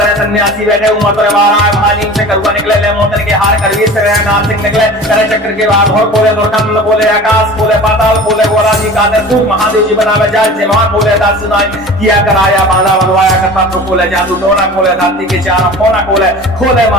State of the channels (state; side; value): normal; both; correlation 0.39